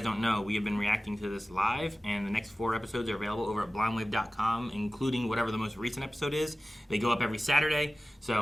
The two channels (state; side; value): normal; both; correlation 0.96